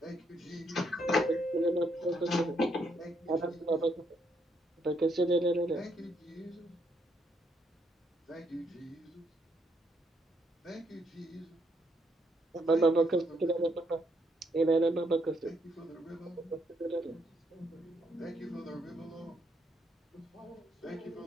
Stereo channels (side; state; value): both; normal; correlation 0.74